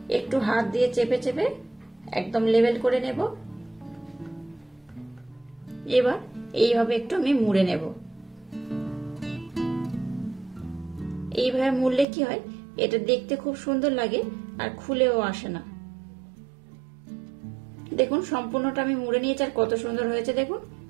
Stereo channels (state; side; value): drops out; left; at 12.1 s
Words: একটু হাত দিয়ে চেপে চেপে একদম লেভেল করে নেব। এবার এইভাবে একটু আমি মুড়ে নেব। এইভাবে মুড়লে কি হয়, এটা দেখতে খুব সুন্দর লাগে আর খুলেও আসে না। দেখুন সম্পূর্ণটা আমি মুড়ে নিয়েছি আর কত সুন্দর হয়েছে দেখুন,